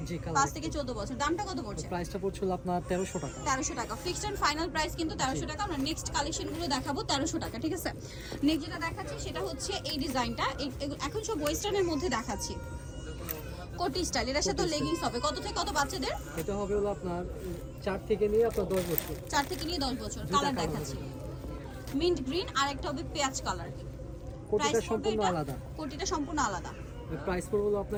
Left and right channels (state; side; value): identical; both; correlation 1.00